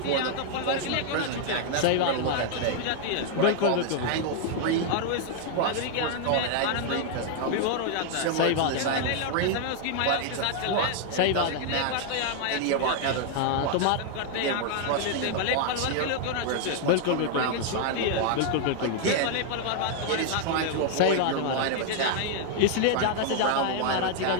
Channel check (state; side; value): different; both; correlation 0.00